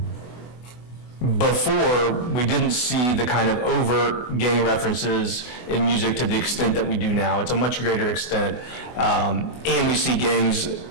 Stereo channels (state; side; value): late; right; 24 ms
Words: before we didn't see the kind of overt gang references in music to the extent that we do now. It's a much greater extent, and we see gangs